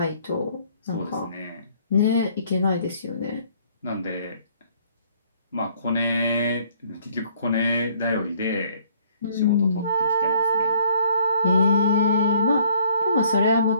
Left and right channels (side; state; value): both; inverted; correlation -0.62